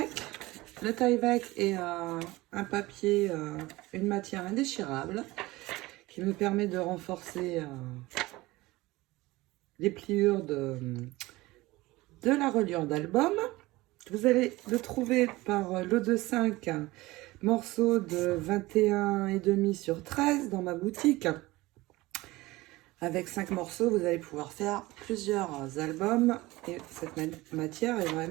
Le Tyvek est un papier, une matière indéchirable qui me permet de renforcer les pliures de la reliure d'album. Vous allez le trouver par lot de 5 morceaux de 21,5 sur 13 dans ma boutique. Avec 5 morceaux, vous allez pouvoir faire plusieurs albums et cette matière est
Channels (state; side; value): quieter; left; 19.9 dB